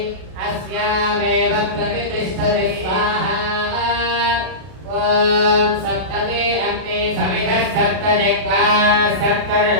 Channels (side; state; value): left; late; 32 ms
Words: अस्यामेव प्रतिष्ठति स्वाहा ॐ सप्तमे अग्ने समिधः सप्तजिह्वा